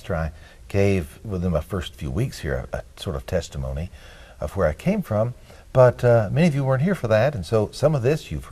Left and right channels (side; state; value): both; identical; correlation 1.00